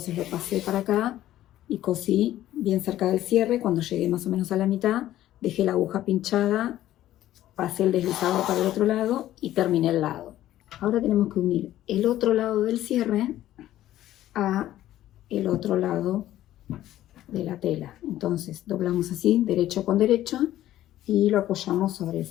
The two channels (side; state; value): right; quieter; 13.5 dB